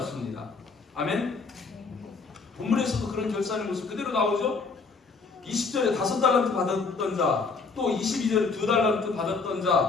아멘. 본문에서도 그런 결산의 모습 그대로 나오죠. 20절에 5달란트 받았던 자, 또 22절에 2달란트 받았던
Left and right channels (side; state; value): right; quieter; 4.5 dB